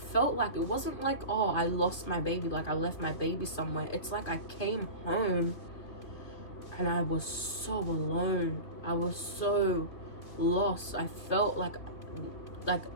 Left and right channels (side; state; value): right; late; 2.7 ms